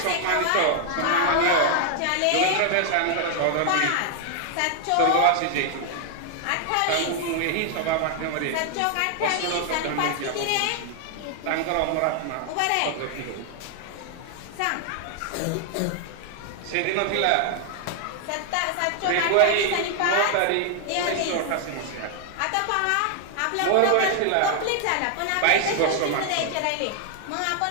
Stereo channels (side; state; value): both; different; correlation 0.00